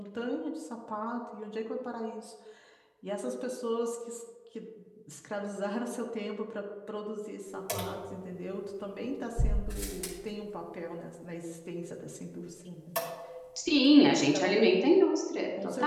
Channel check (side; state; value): both; identical; correlation 1.00